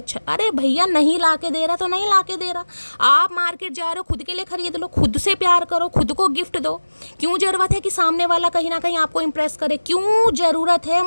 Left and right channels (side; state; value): both; inverted; correlation -1.00